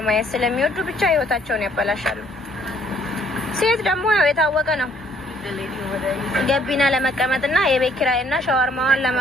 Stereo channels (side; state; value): both; normal; correlation 0.63